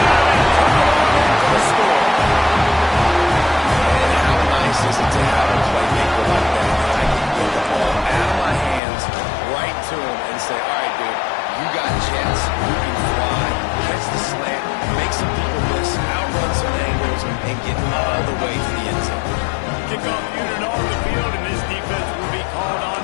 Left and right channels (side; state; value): right; drops out; at 8.8 s